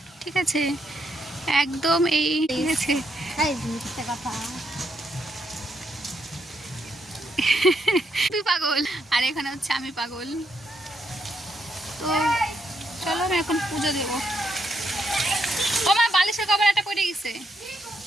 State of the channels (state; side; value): normal; both; correlation 0.78